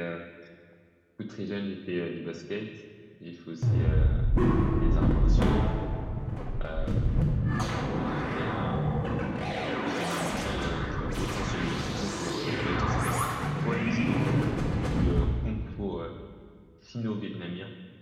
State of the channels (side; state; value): both; identical; correlation 1.00